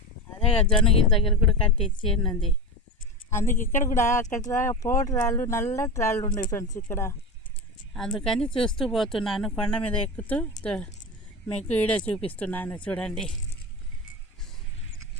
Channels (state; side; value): normal; both; correlation 0.23